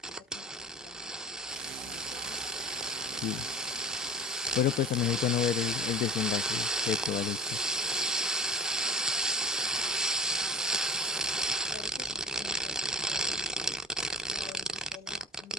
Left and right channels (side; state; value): both; normal; correlation 0.40